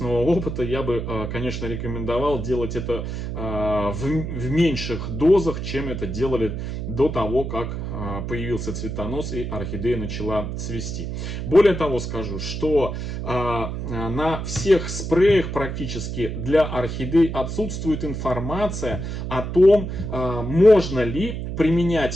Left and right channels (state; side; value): noise; right; hum, 5 dB below the sound